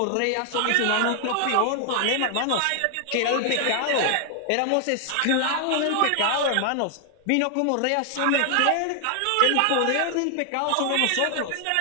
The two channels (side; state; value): both; different; correlation 0.00